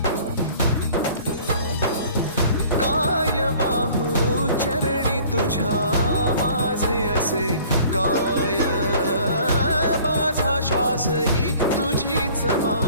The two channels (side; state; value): both; inverted; correlation -0.51